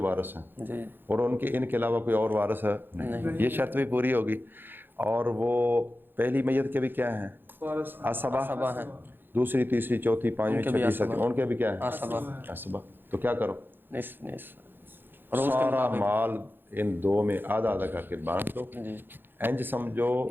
ہیں. جی. اور ان کے علاوہ کوئی اور وارث ہے نہیں. یہ شرط بھی پوری ہوگی. اور وہ پہلی میت کے بھی کیا ہیں؟ اسبا. اسبا ہیں. دوسری تیسری چوتھی پانچویں چھٹی ساتویں ان کے بھی کیا ہے؟ اسبا. اسبا. تو کیا کرو؟ نصف. سارا مال ان 2 میں آدھا آدھا کر کے بانٹ دو. جی. انج سمجھو،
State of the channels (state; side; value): late; left; 0.098 ms